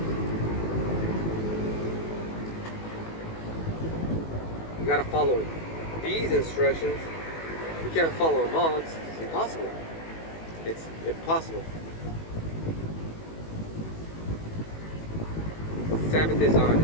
You gotta follow these instructions. You can't follow them all. It's impossible. It's impossible. Sabbath is on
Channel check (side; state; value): right; late; 18 ms